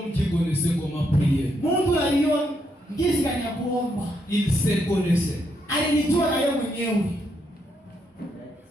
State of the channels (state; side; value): normal; both; correlation 0.78